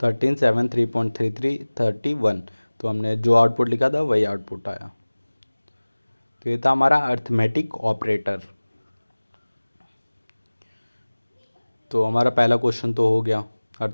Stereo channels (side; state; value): both; inverted; correlation -1.00